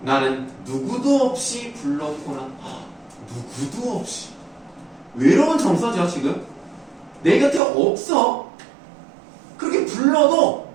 나는 누구도 없이 불렀구나. 누구도 없이 외로운 정서죠 지금. 내 곁에 없어. 그렇게 불러도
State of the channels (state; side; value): drops out; left; at 7.6 s